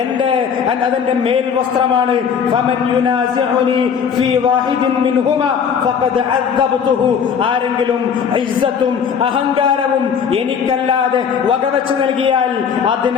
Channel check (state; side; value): quieter; right; 7.1 dB